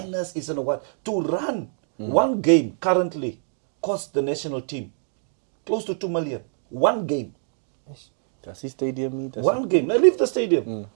it's in a what. To run one game currently costs the national team close to 2 million. One game. Does he stadium? One game. Now leave the stadium.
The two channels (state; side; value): silent; left; digital silence